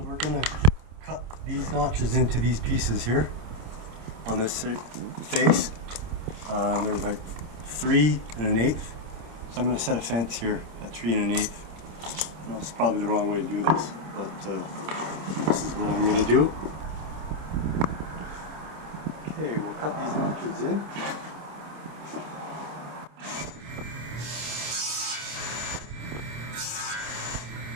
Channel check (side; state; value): left; late; 27 ms